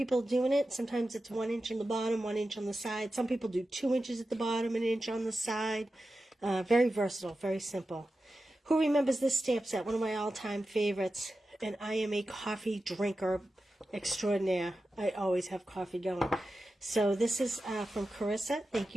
doing it. Sometimes it's 1 inch on the bottom, 1 inch on the side. Some people do 2 inches at the bottom, 1 inch on the side. Very versatile, very simple. Who remembers this stamp set? One of my all-time favorites. And I am a coffee drinker extraordinaire. I always have coffee going. So this is from Carissa. Thank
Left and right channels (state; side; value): normal; both; correlation 0.92